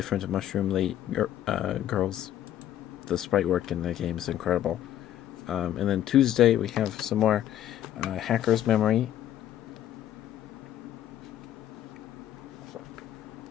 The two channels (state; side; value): quieter; right; 11.5 dB